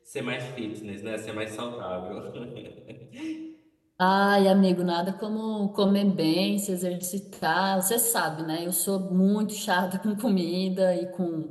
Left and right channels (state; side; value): identical; both; correlation 1.00